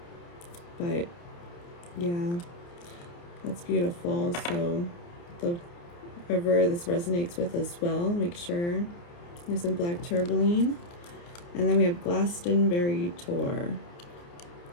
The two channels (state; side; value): late; right; 29 ms